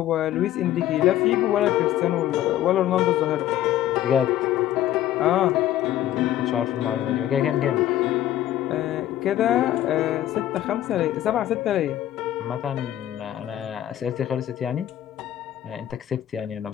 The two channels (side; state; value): right; quieter; 12.7 dB